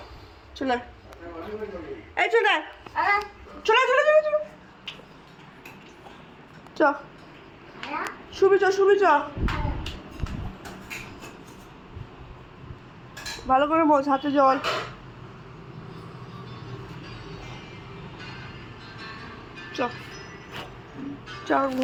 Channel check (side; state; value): both; identical; correlation 1.00